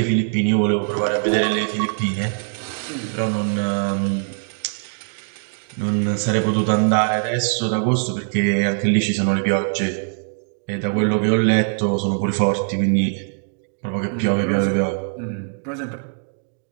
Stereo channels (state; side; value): silent; left; 64 dB below the other